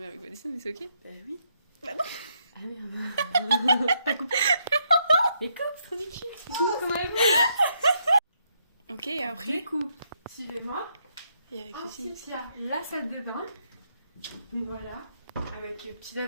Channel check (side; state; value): both; inverted; correlation -0.76